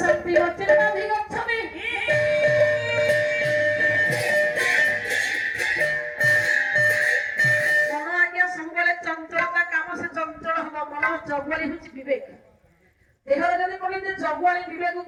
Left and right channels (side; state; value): both; identical; correlation 1.00